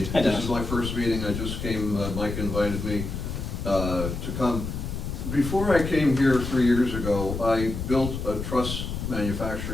Hi, Dennis. This is my first meeting, I just came, Mike invited me, to come. Before I came here 3 years ago, I built a truss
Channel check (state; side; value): noise; left; rumble, 5 dB below the sound